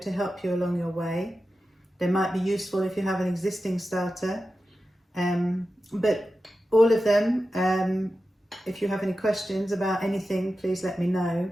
help you along your way. They might be useful if you have an existing starter, but all of them, if you have any questions about anything, please let me know.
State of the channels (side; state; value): both; normal; correlation 0.92